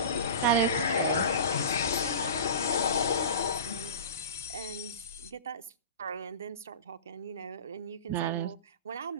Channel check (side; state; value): both; inverted; correlation -0.32